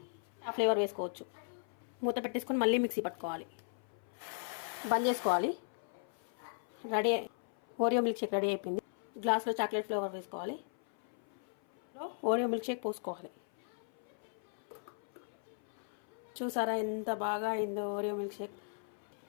ఆ ఫ్లేవర్ వేసుకోవచ్చు. మూత పెట్టేసుకొని మళ్ళీ మిక్సీ పట్టుకోవాలి. బంద్ చేసుకోవాలి. Ready, Oreo milk shake ready అయిపోయింది. గ్లాస్లో చాక్లెట్ ఫ్లేవర్ వేసుకోవాలి. ఓరియో మిల్క్ షేక్ పోసుకోవాలి. చూసారా ఎంత బాగా అయిందో ఓరియో మిల్క్ షేక్.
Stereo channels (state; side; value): silent; right; 53 dB below the other